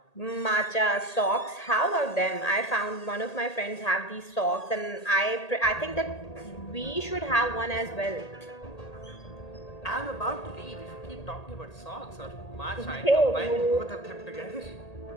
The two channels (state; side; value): late; right; 1.8 ms